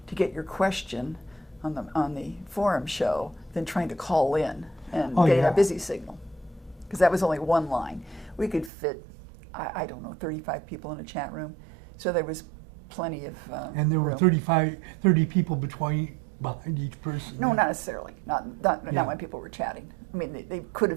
to get your question on the forum show than trying to call in and getting a busy signal, because that was only one line. We could fit, I don't know, 35 people in a chat room, so there was plenty of and there were room. 30 people behind each person. No, not necessarily. Not when people were chatting. I mean, they could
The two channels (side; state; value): left; drops out; at 8.7 s